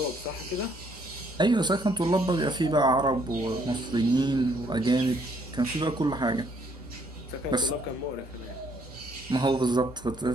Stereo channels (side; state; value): both; normal; correlation 0.67